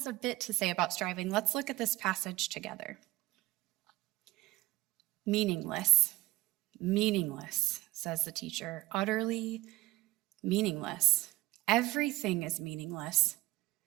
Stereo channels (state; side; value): quieter; left; 18.5 dB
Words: a bit to say about striving. Let's look at this passage together. Meaningless, meaningless, says the teacher, utterly meaningless. Everything is meaningless.